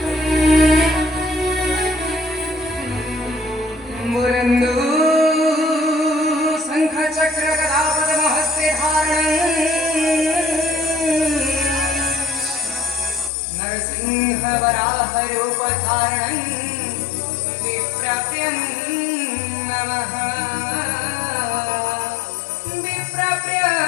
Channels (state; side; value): drops out; right; at 13.3 s